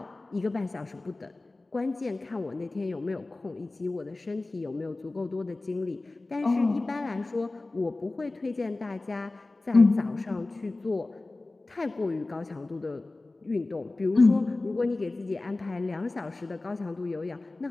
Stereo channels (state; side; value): quieter; right; 3.1 dB